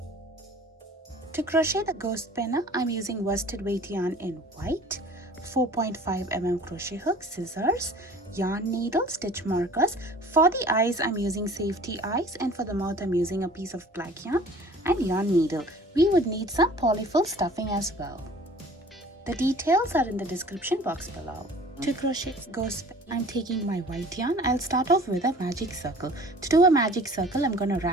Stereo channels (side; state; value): both; normal; correlation 0.47